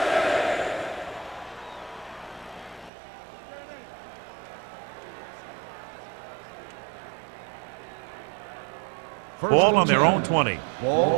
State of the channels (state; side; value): drops out; left; at 2.9 s